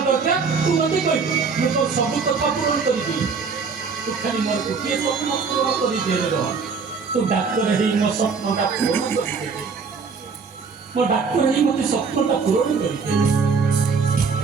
दरकार तू मते कहि मैं तो सब कथा पूर्ण करबी तू खाली मोर को के स्वप्न पूर्ण करि दे रे तू डॉक्टर हेई मो स्वप्नटा पूर्ण करि दे मो डॉक्टर हेई मते स्वप्नटा पूर्ण करि दे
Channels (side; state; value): left; quieter; 5.2 dB